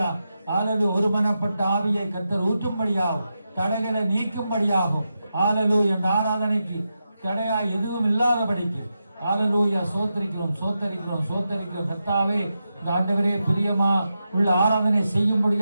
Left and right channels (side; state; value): both; inverted; correlation -0.88